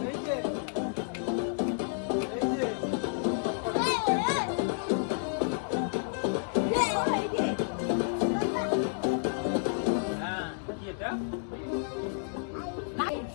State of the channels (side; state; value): right; silent; digital silence